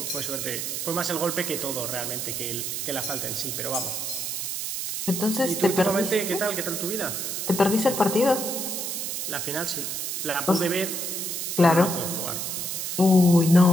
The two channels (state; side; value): noise; right; hiss, 3 dB below the sound